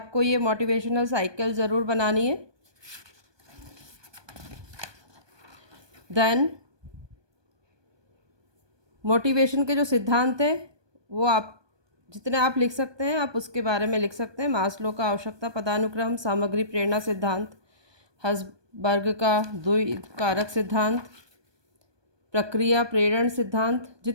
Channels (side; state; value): left; late; 1.2 ms